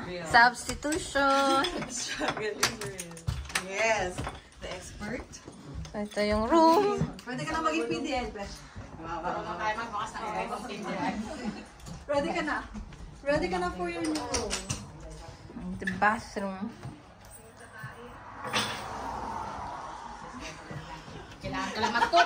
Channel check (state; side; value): identical; both; correlation 1.00